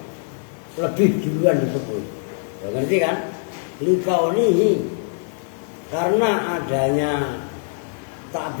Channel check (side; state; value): right; silent; 64 dB below the other